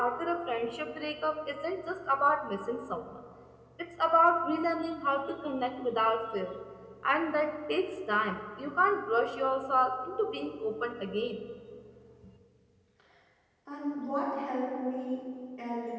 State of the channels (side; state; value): both; identical; correlation 1.00